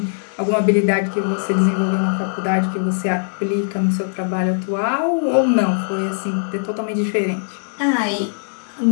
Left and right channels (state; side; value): silent; right; digital silence